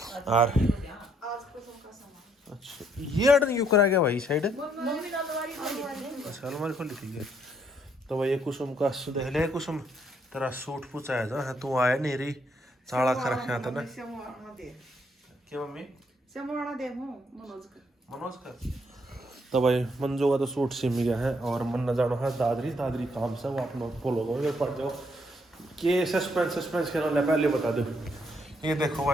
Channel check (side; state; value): both; normal; correlation 0.71